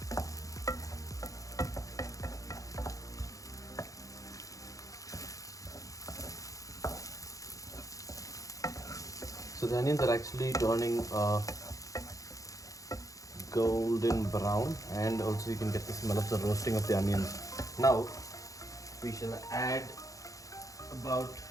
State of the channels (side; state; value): right; late; 0.16 ms